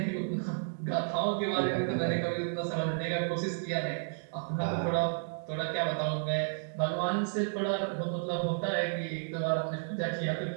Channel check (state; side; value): silent; left; digital silence